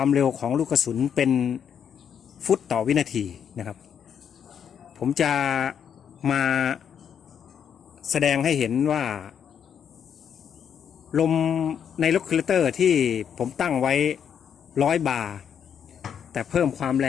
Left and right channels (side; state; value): right; quieter; 8.1 dB